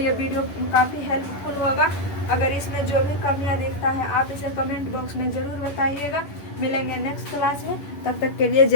वीडियो काफ़ी हेल्पफुल होगा। अगर इसमें जो भी कमियां दिखता है आप इसे कमेंट बॉक्स में ज़रूर बताइएगा। मिलेंगे नेक्स्ट क्लास में, तब तक के लिए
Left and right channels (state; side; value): late; right; 10 ms